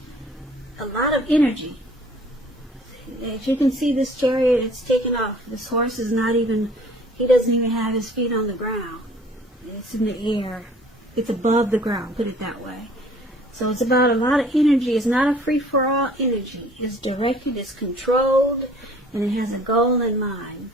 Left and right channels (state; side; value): normal; both; correlation 0.53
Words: lot of energy. As you can see, this Chariot, it's taken off. This horse is he doesn't even have his feet on the ground. It's in the air. It's above the ground, put it that way. So it's about a lot of energy. It's not a free-for-all energy. It's directed, it's controlled, and it has a goal in mind.